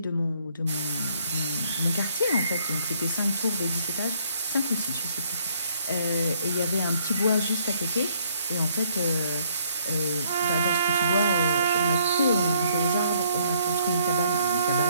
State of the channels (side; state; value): both; inverted; correlation -0.66